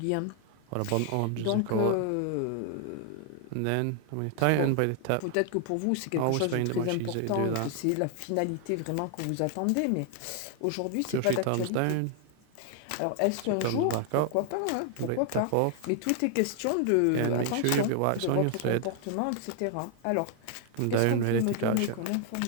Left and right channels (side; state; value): both; different; correlation 0.00